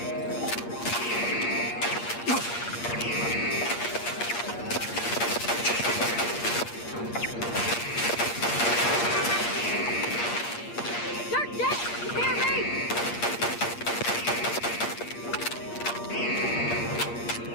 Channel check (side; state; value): right; late; 8.5 ms